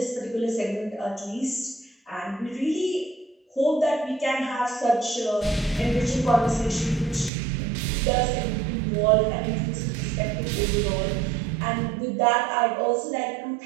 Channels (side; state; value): left; drops out; at 7.3 s